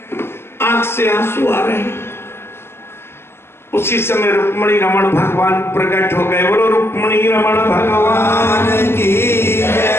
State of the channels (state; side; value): late; right; 0.12 ms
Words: आंख से आंसू आ रहे हैं। उसी समय रुक्मिणी रमण भगवान प्रकट हो गए। बोलो रुक्मिणी रमण भगवान की